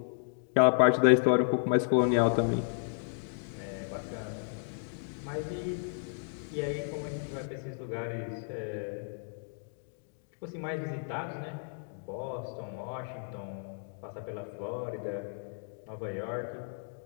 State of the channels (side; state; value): right; silent; digital silence